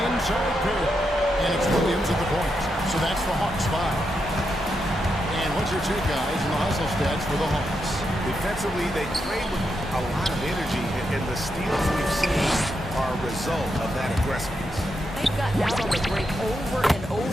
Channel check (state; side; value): normal; both; correlation 0.84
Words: inside pair. And it's Williams at the point. So that's the Hawks 5. And what's your take, guys, in the hustle stats for the Hawks? Defensively, they play with a lot of energy, and the steals we've seen are a result of that aggressiveness. They've gotten out on the break over and